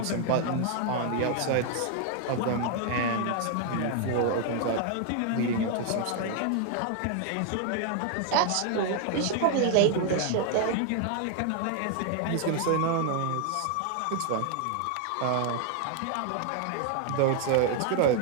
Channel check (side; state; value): both; different; correlation 0.00